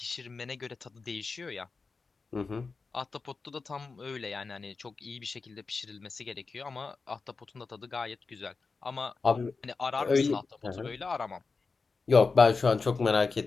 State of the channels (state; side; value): quieter; right; 4.4 dB